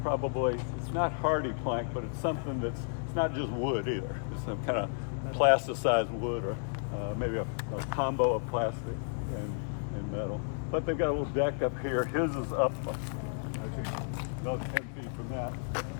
probably, it's not hardy plank, but it's something it's not just wood either. It's some kind of plasticized wood or maybe a combo of plastic and metal. But they've got a little deck up here. His is up, actually, another 10 feet from that.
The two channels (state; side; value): silent; right; 56 dB below the other